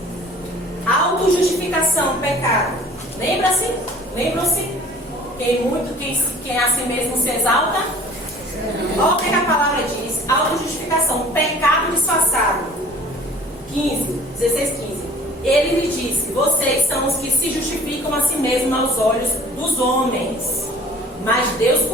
Autojustificação, pecado. Lembram-se? Quem a si mesmo se exalta. Olha o que a palavra diz. Autojustificação, pecado disfarçado. 16, 15. Ele lhe disse: vocês são os que se justificam a si mesmos aos olhos dos homens, mas Deus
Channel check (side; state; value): both; normal; correlation 0.49